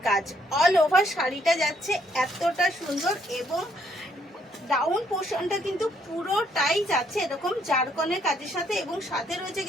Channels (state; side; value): normal; both; correlation 0.70